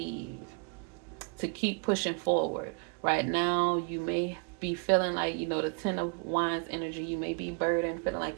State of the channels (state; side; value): quieter; left; 34.2 dB